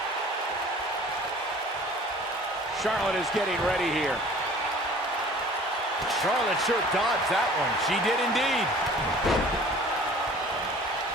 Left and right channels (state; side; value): normal; both; correlation 0.48